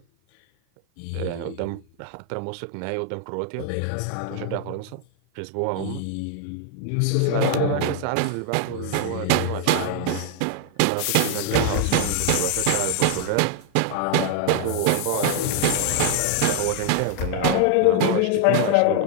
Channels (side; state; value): both; different; correlation 0.00